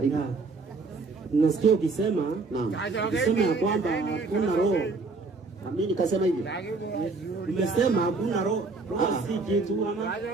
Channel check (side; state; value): left; quieter; 3.8 dB